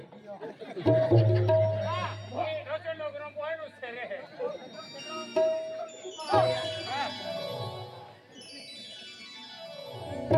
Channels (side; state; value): both; identical; correlation 1.00